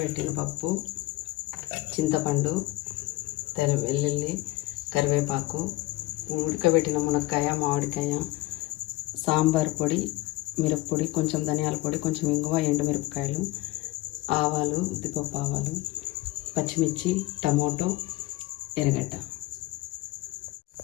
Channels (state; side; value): quieter; right; 19.2 dB